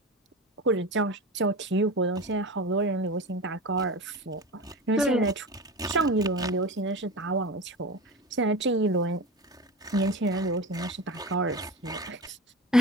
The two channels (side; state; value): both; normal; correlation 0.29